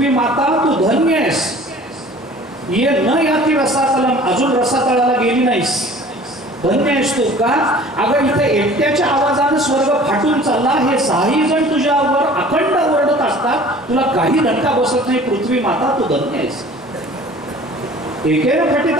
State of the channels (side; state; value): both; normal; correlation 0.47